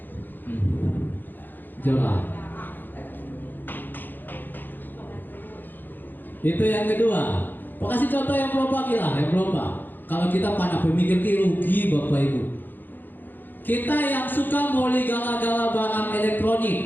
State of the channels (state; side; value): late; right; 0.090 ms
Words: jualan. Itu yang kedua. Kasih contoh yang berubah lah, yang berubah. Kalau kita pada pemikir rugi Bapak Ibu. Kita yang suka boleh gala-gala barang